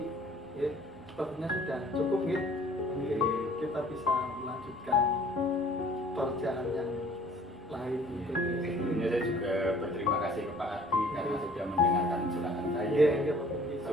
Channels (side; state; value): both; normal; correlation 0.54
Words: Ya, sepertinya sudah cukup ya. Mungkin kita bisa melanjutkan pekerjaan yang lain gitu. Sebelumnya saya juga berterima kasih ke Pak Ardi karena sudah mendengarkan curhatan saya, Iya, iya Pak Pungki.